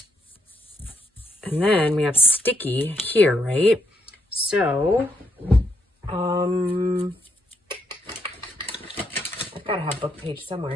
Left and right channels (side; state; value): both; normal; correlation 0.77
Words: And then we have sticky here, right? So, I've got to have book page